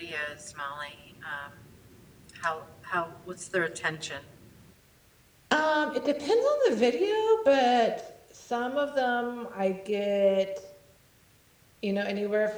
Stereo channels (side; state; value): both; identical; correlation 1.00